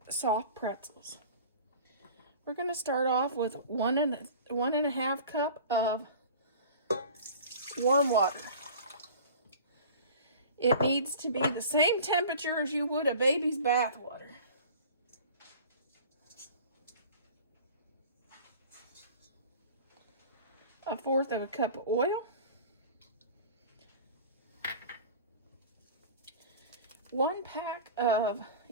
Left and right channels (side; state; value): both; inverted; correlation -0.42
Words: soft pretzels. We're going to start off with one and a half cup of warm water. It needs to be the same temperature as you would a baby's bath water. A fourth of a cup of oil. 1 pack of